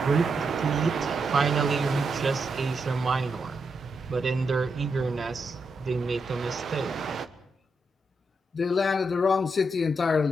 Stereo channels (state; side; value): normal; both; correlation 0.83